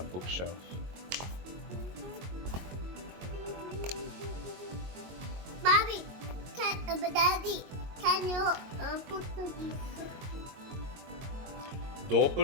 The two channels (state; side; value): late; left; 22 ms